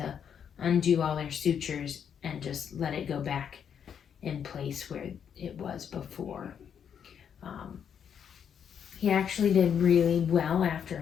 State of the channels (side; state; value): right; quieter; 8.0 dB